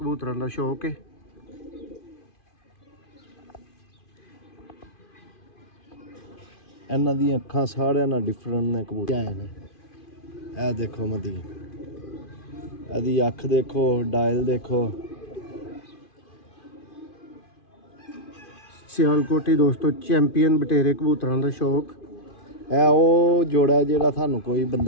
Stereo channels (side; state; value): right; late; 2.5 ms